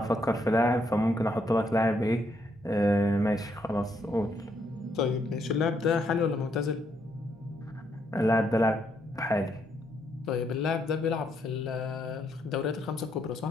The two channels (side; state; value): both; normal; correlation 0.75